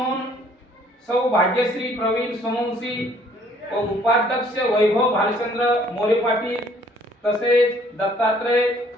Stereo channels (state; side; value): normal; both; correlation 0.60